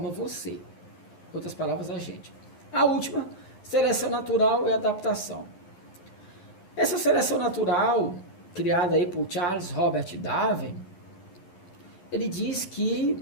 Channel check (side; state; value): right; late; 11 ms